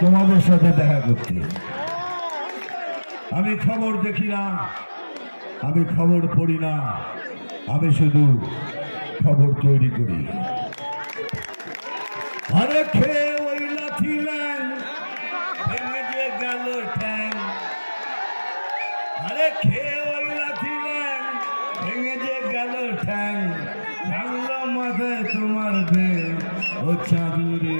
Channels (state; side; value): inverted; both; correlation -1.00